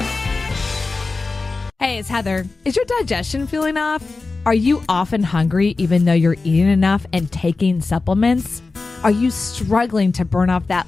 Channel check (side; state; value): right; quieter; 3.8 dB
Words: Hey, it's Heather. Is your digestion feeling off? Are you often hungry even though you're eating enough and taking supplements? Are you struggling to burn off